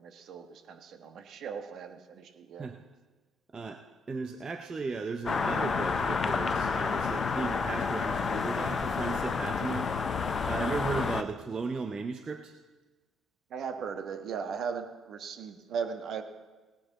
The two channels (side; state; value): both; normal; correlation 0.77